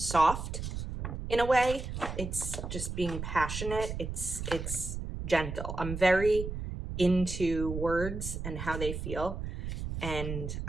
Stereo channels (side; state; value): right; noise; rumble, 6 dB below the sound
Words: in a way. It's just being passionate. It's gentle. I'm very into words and how they feel. And